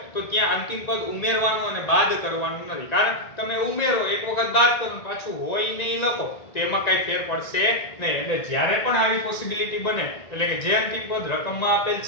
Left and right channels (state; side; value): late; right; 1.9 ms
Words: તો ત્યાં અંતિમ પદ ઉમેરવાનું અને બાદ કરવાનું નથી, કારણ તમે ઉમેરો એક વખત બાદ કરો પાછું હોય નહીં લખો તો એમાં કઈ ફેર પડશે નહીં. એટલે જ્યારે પણ આવી પોસિબિલિટી બને, એટલે કે જે અંતિમ પદ રકમમાં આપેલ